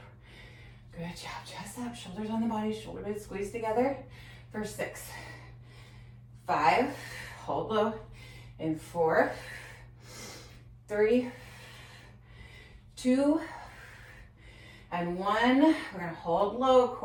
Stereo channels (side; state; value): both; identical; correlation 1.00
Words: Good job. Chest up, shoulders on the body, shoulder blades squeeze together for 6, 5, hold low, in 4, 3, 2, and 1. We're gonna hold low,